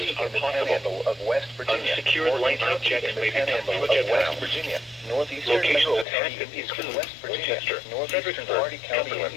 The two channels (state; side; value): drops out; right; at 6.1 s